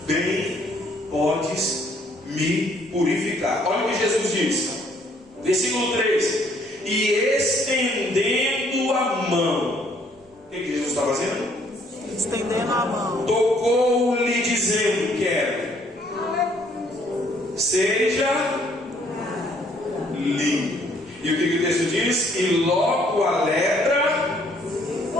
bem podes me purificar. Olha o que Jesus diz, versículo 3: e estendendo a mão, o que Jesus está fazendo? Estendendo a mão, Tocou-lhe, dizendo: quero, seja limpo. E o que o texto diz? E logo a lepra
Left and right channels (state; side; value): normal; both; correlation 0.64